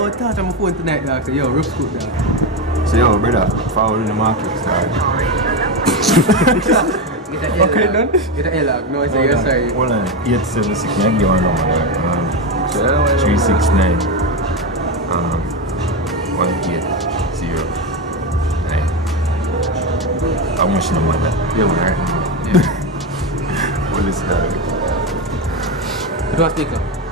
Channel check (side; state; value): both; normal; correlation 0.13